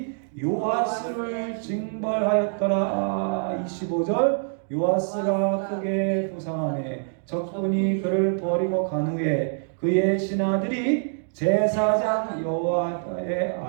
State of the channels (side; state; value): left; silent; digital silence